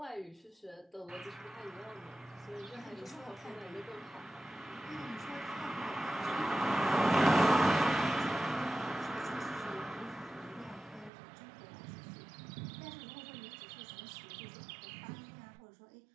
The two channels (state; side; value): drops out; left; at 11.1 s